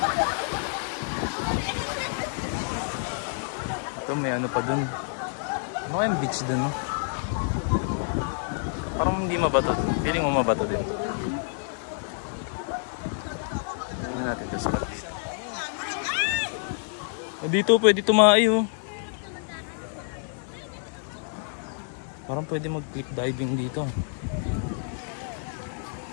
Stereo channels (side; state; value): right; silent; digital silence